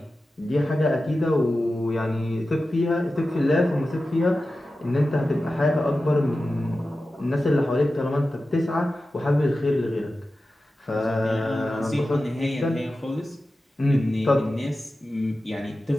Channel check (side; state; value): both; normal; correlation 0.93